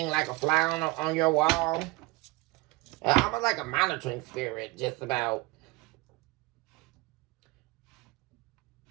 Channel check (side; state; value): left; quieter; 22.9 dB